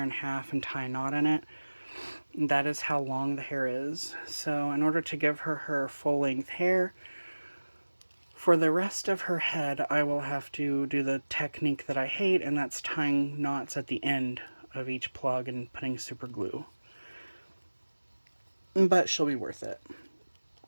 in half and tie a knot in it, that is how long the hair is. So in order to give her her full length hair, for the rest of her head, I will have to do the technique that I hate, and that's tying knots at the end of each plug and putting super glue. But she'll be worth it.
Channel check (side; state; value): both; inverted; correlation -1.00